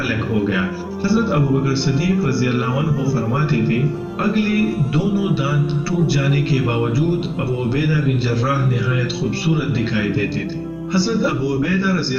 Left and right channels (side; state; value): both; identical; correlation 1.00